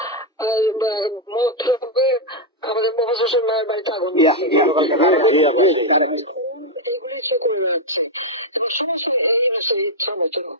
আমাদের মোহাম্মদ হোসেন মায়ের বাড়িতে আগুন, এইগুলি সে করে যাচ্ছে এবং সমস্ত এই বিষয়ে ইচ্ছা মতো।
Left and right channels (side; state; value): both; normal; correlation 0.00